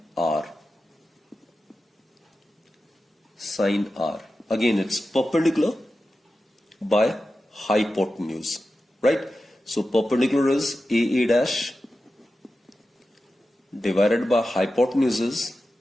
R. Sine R. Again, it's perpendicular by hypotenuse. Right? So perpendicular is AA dash divided by hypotenuse is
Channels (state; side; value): normal; both; correlation 0.92